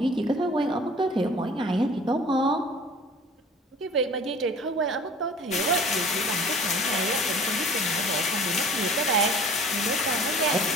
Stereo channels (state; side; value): normal; both; correlation 0.46